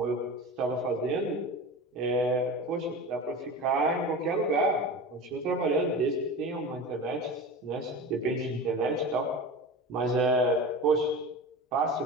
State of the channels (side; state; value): both; normal; correlation 0.30